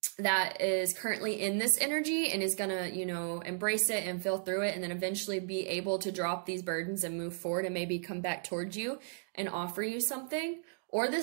that is currently in this energy and is gonna, you know, embrace it and feel through it, and then eventually be able to drop these burdens and move forward and maybe come back towards you and offer you something. Or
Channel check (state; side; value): silent; left; digital silence